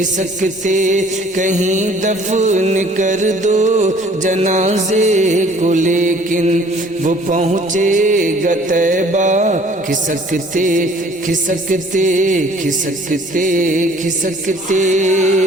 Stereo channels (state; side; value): normal; both; correlation 0.55